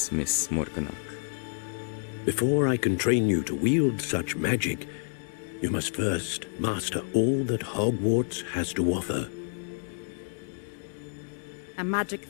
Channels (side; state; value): right; silent; 59 dB below the other